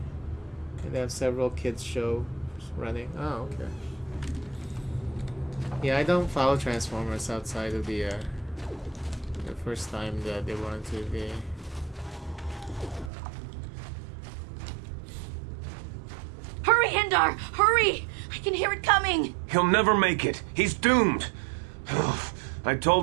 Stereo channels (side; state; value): left; drops out; at 13.1 s